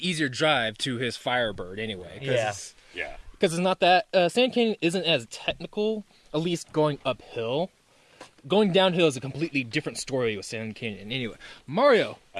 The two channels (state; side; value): identical; both; correlation 1.00